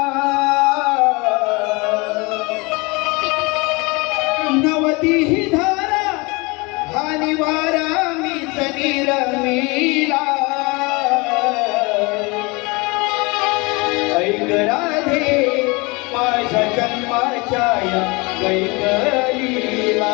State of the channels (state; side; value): quieter; right; 26.5 dB